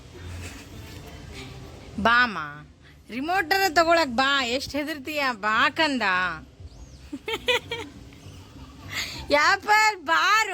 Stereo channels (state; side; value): identical; both; correlation 1.00